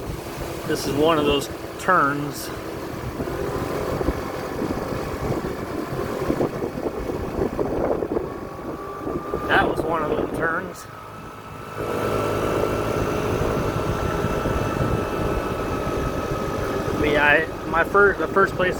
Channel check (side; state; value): both; identical; correlation 1.00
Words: This is one of those turns. That was one of those turns. The first